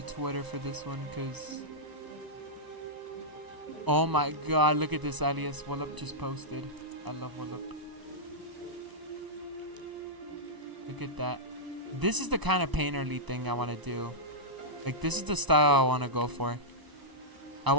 Twitter for this one because. Oh my god, look at this alias Wallop just posted. I love Wallop. Look at that. This is the kind of painterly thing I want to do. Like, this is the style I want to go for. I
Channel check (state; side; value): late; left; 1.0 ms